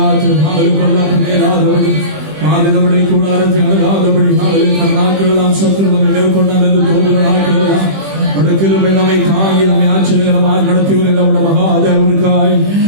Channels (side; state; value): left; late; 20 ms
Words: கொள்ளாத நேராதபடி பாதுகாப்படி கூடாரத்தை அணுகாதபடி நாட்கள் எல்லாம் சத்துரு நம்மை மேற்கொண்டார் என்று தோன்றுகிறார்கள். கிருபை நம்மை தாங்கி நம்மை ஆச்சரியகரமாக நடத்தி வருகிற மகாதேவனுக்காய்